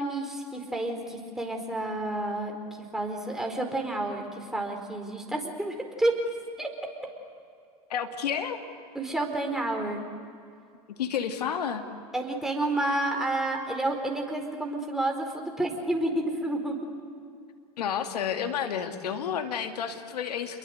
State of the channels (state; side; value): normal; both; correlation 0.54